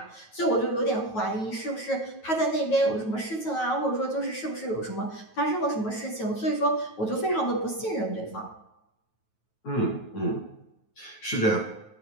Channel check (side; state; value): right; late; 9.2 ms